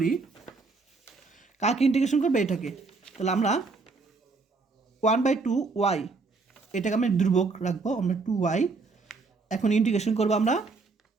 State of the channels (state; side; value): quieter; left; 4.1 dB